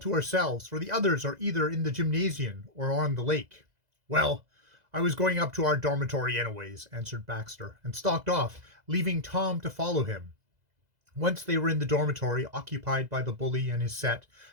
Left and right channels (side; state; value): left; late; 2.0 ms